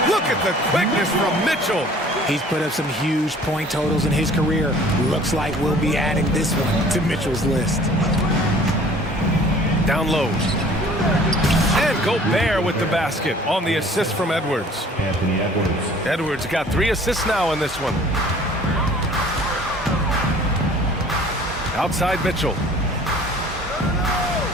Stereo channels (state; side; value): normal; both; correlation 0.51